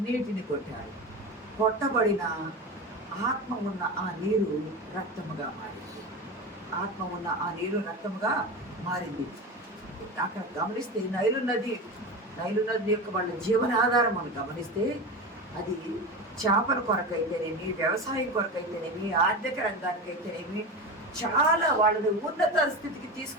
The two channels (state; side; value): normal; both; correlation 0.24